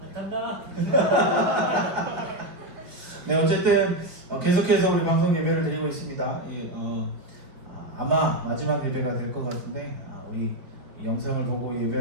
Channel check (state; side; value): late; left; 4.9 ms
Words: 안 탄다. 네, 어쨌든 계속해서 우리 방송 예배를 드리고 있습니다. 아마 마지막 예배가 될 것 같은데 우리 이 영상을 보고